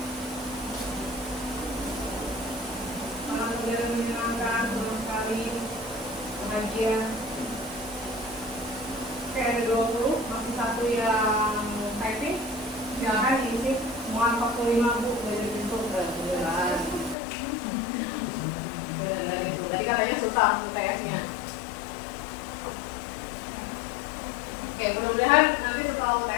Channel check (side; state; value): right; drops out; at 17.2 s